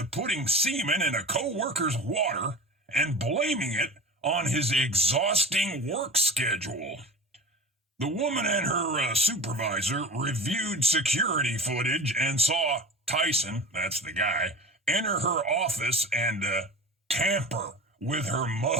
putting semen in a co-worker's water and blaming it on his exhausting work schedule. The woman and her supervisor reviewed security footage and saw Tyson, that's the guy, enter her office and tamper with her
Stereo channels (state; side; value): normal; both; correlation 0.33